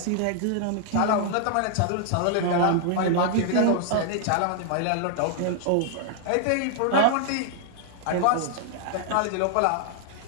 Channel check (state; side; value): different; both; correlation 0.00